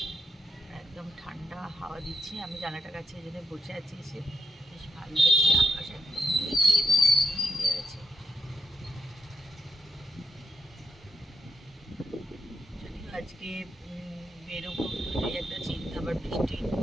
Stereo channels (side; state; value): both; normal; correlation 0.80